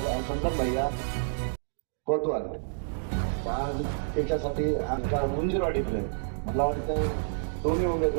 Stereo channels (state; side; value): silent; left; digital silence